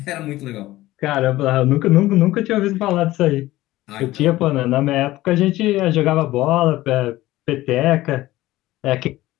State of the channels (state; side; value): quieter; right; 16.8 dB